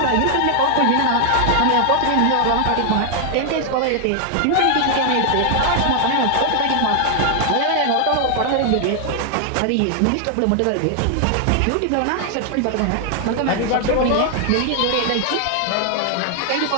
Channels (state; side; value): different; both; correlation 0.00